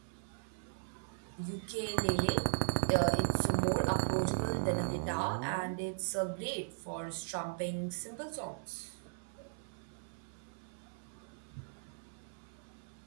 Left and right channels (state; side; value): silent; left; 52 dB below the other